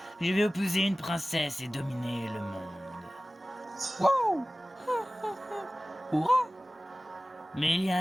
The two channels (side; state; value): both; normal; correlation 0.97